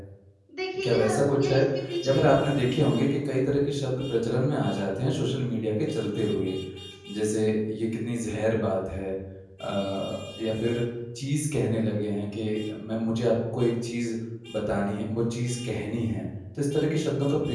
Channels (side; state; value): both; identical; correlation 1.00